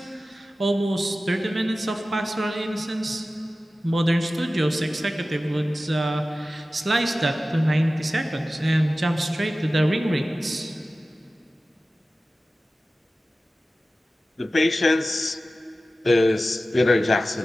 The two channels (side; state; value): both; normal; correlation 0.95